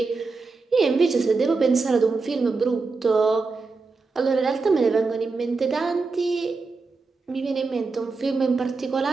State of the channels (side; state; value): left; quieter; 4.1 dB